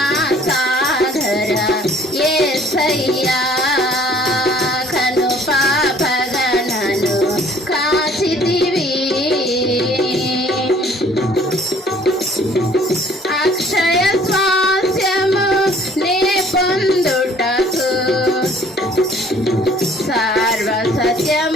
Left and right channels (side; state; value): both; normal; correlation 0.56